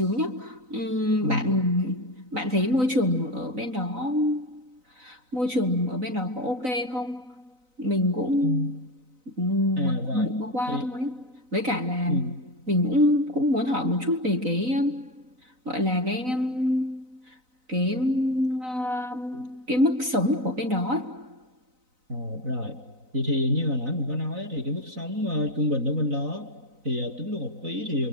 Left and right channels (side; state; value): left; late; 4.0 ms